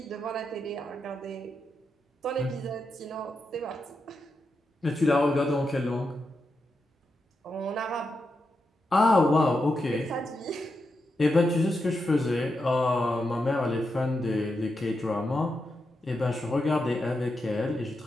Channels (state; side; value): normal; both; correlation 0.86